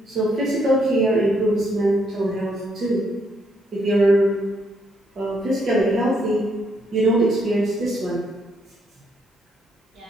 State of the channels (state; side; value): normal; both; correlation 0.73